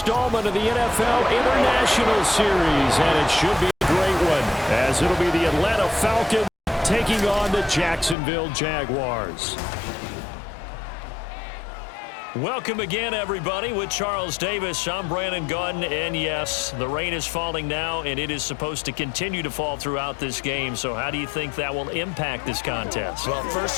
of the NFL International Series, and it should be a great one, as it'll be the Atlanta Falcons taking on the Jacksonville Jaguars. Welcome again, everybody, with Charles Davis. I'm Brandon Gunn, and yes, the rain is falling now, and it is supposed to continue to fall throughout this game. So how do you think that will impact this contest? Well,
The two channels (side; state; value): right; drops out; at 8.2 s